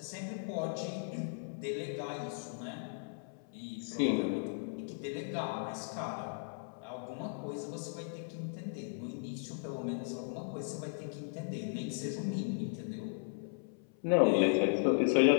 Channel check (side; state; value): right; silent; 53 dB below the other